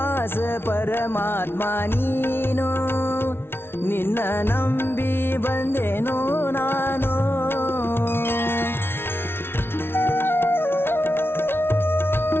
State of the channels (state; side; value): late; right; 0.11 ms